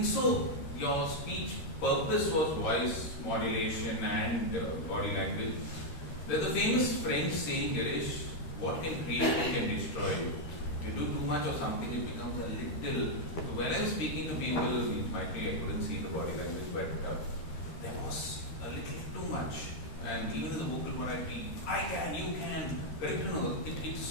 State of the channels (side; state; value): right; late; 13 ms